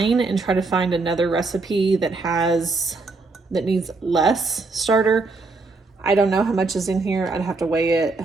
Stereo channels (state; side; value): quieter; left; 3.7 dB